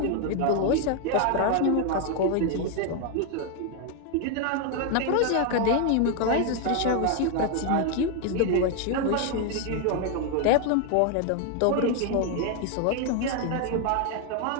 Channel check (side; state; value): both; different; correlation 0.01